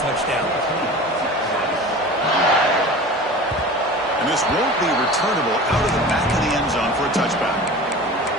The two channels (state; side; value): normal; both; correlation 0.37